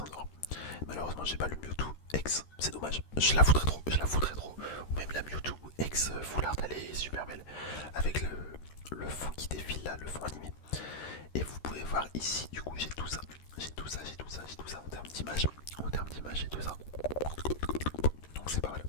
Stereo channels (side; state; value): right; late; 13 ms